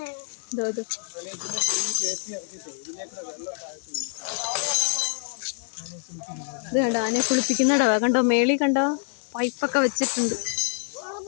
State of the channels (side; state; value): right; silent; 61 dB below the other